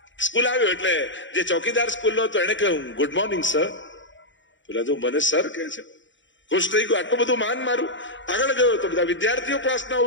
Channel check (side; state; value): right; late; 0.55 ms